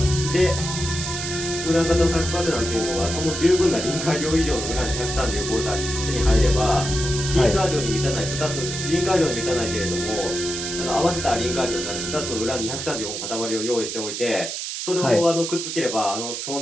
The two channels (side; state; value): right; noise; hiss, 5 dB below the sound